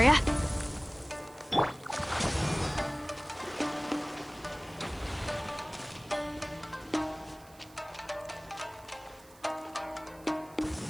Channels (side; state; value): right; noise; hiss, 24 dB below the sound